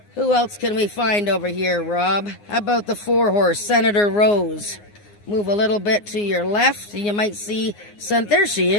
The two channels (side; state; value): right; late; 9.7 ms